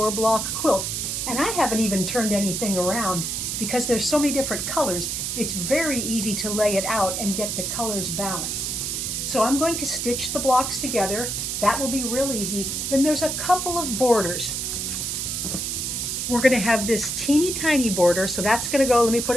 block quilt. And I haven't even turned anything around because there's so many different colors. It's very easy to lay it out and get the colors balanced. So I'm going to stitch the blocks together. That will be real easy. Then there's a couple of borders. We're going to have this teeny tiny border. So that's going to go, let me put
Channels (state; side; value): noise; right; hiss, 2 dB below the sound